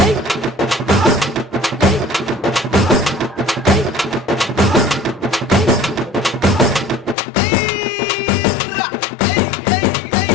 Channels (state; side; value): drops out; right; at 7.2 s